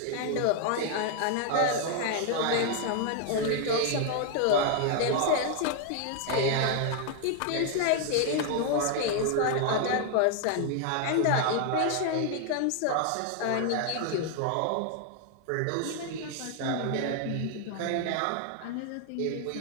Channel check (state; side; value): different; both; correlation 0.00